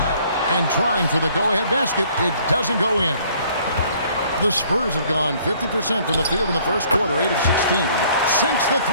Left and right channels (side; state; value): both; inverted; correlation -0.59